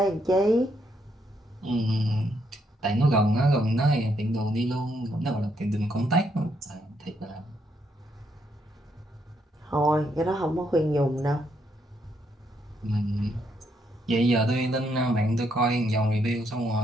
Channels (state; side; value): normal; both; correlation 0.75